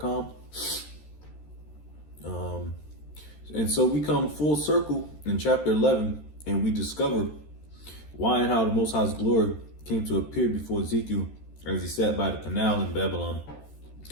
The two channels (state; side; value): late; right; 13 ms